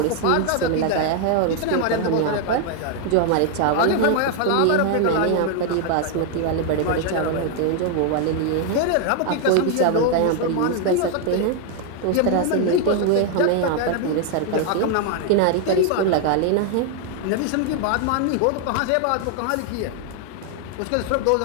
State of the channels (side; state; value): both; different; correlation 0.00